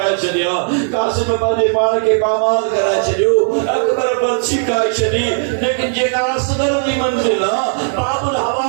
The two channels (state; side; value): silent; left; digital silence